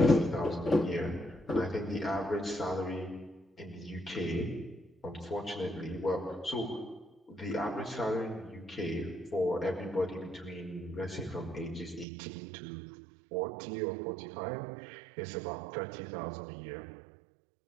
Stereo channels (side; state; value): left; drops out; at 12.1 s